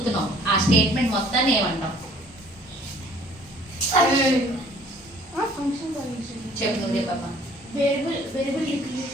ఆ స్టేట్మెంట్ మొత్తాన్ని ఏమంటావు? చెప్పు నువ్వే పాప.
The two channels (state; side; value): normal; both; correlation 0.56